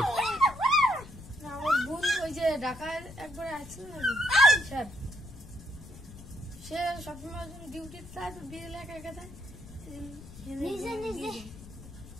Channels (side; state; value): left; noise; rumble, 16 dB below the sound